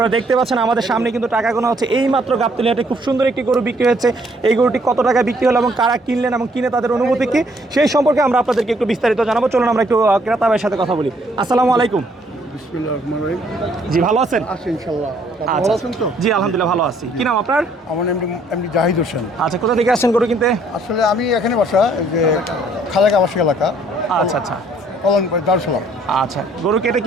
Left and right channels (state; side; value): normal; both; correlation 0.65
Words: দেখতে পাচ্ছেন আমাদের সামনে কিন্তু টাকা গোনা হচ্ছে। এই মাত্র গাবতলী হাটে খুব সুন্দর একটি গরু বিক্রি হয়েছে। এই গরুটি কত টাকা বিক্রি হলো এবং কারা কিনলেন এবং কিনে তাদের অনুভূতি কি, সেই সম্পর্কে আমরা আপনাদেরকে একটু বিস্তারিত জানাবো। চলুন আমরা একটু ক্রেতা ভাইয়ের সাথে কথা বলি। আসসালামু আলাইকুম। জি, ভালো আছেন? আচ্ছা, জি আলহামদুলিল্লাহ ভালো আছি। কি নাম আপনার? আমার এমনি জাহিদ হোসেন। আচ্ছা, কোথা থেকে আসছেন গরু কিনতে? আসলে আমি এখানে বাসা, যে খালেক আবাসিক এলাকা। আচ্ছা আচ্ছা দারুসালাম। আচ্ছা, গরু কেটে